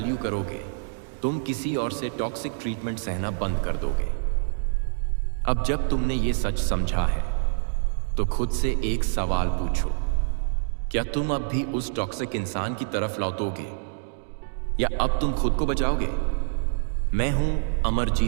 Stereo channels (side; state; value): left; silent; digital silence